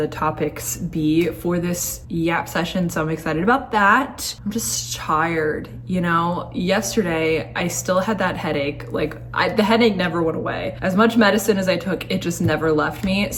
topics be for this Yap session, so I'm excited about that. I'm just tired, you know? Yesterday, I still had that headache. The headache never went away. As much medicine as I took, it just never left me.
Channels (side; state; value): both; identical; correlation 1.00